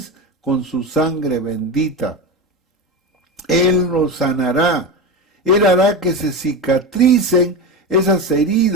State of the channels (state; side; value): normal; both; correlation 0.21